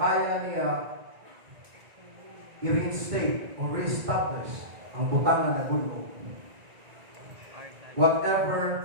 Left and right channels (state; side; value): late; left; 1.9 ms